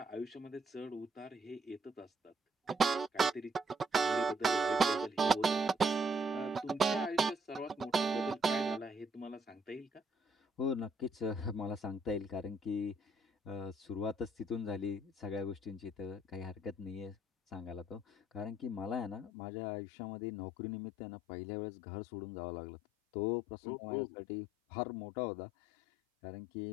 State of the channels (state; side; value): drops out; right; at 19.3 s